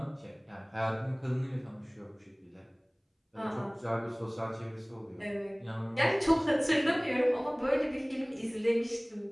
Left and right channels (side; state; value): both; identical; correlation 1.00